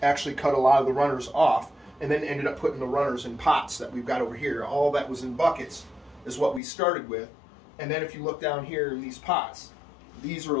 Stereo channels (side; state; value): right; drops out; at 6.6 s